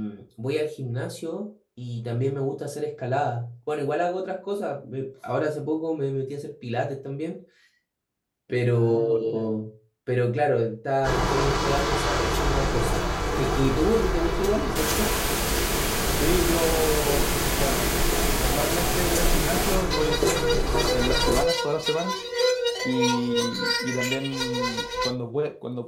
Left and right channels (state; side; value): identical; both; correlation 1.00